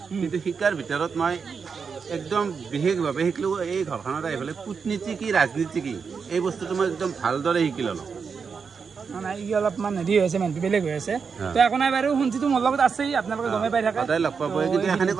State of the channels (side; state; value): left; quieter; 5.8 dB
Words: কিন্তু শিকাৰ ভিতৰত মই একদম বিশেষভাৱে শিকিলোঁ এই ঘৰখনত আহি পেলাই কূটনীতি কি ৰাজনীতি কি এই বস্তুটো মই একদম ভালদৰে শিকি ল'লোঁ অলপমান হেৰি হৈছে মানুহটো বেলেগ হৈ আছে তো একো নাই বাৰু শুনছিতো মোৰ লগত আছেই আপোনালোকে গমেই পাই থাকে সদায় লগ পাব কিন্তু এখানি